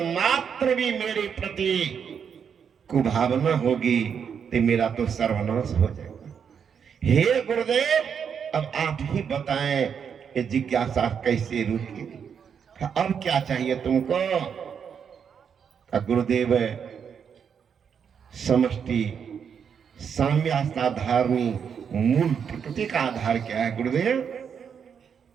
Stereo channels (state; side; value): quieter; left; 7.2 dB